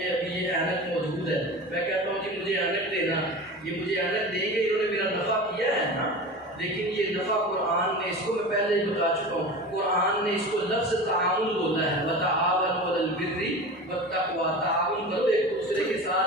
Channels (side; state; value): both; normal; correlation 0.32